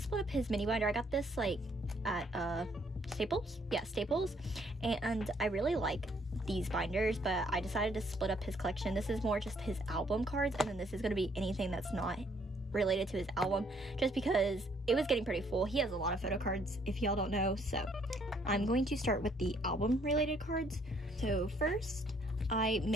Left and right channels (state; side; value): normal; both; correlation 0.66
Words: up his mini binder. I got this like at Staples. Yeah, Staples. And I really like these binders, but I decided to split up his collection. This is more just his album cards, and then this is going to be anything that's not related to his album, just because it was getting pretty full. He has a lot of photo cards, if y'all don't know. So I'm going to start with the album related cards. So first, I